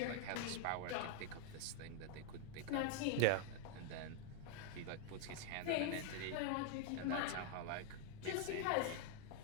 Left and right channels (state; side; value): different; both; correlation 0.00